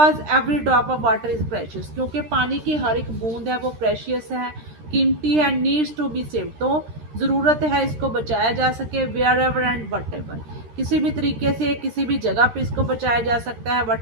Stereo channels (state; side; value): late; left; 13 ms